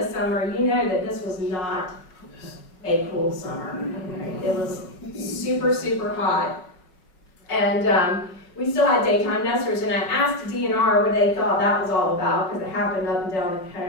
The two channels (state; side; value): late; right; 5.6 ms